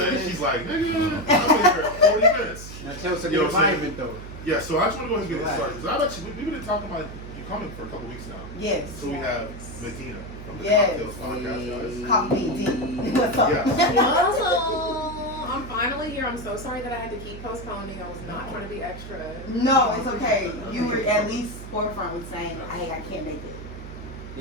She's like, nigga, I'm here 40 minutes. Now tell us about the environment though. Yeah, so I just want to go ahead and get it started because we've been talking about you coming for a couple weeks now. Yes. So we have Medinah from the Yes. CockTales podcast, guys. Copy D. What's up? Yes. I'm finally here. I'm so sorry that I had to keep postponing. I was not trying to be extra. No, it's okay. You were at least forefront with saying, "Hey, I can't make it."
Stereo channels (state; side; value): noise; right; hum, 12 dB below the sound